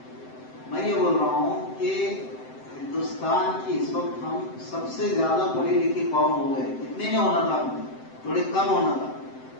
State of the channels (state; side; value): late; right; 7.8 ms